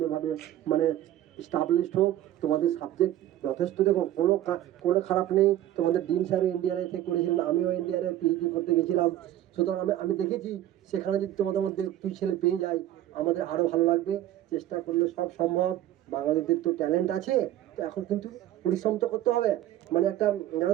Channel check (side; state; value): left; quieter; 13.0 dB